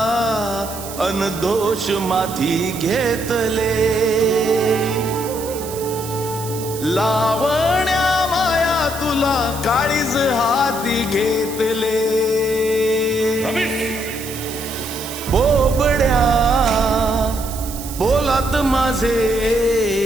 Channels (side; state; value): right; noise; hiss, 12 dB below the sound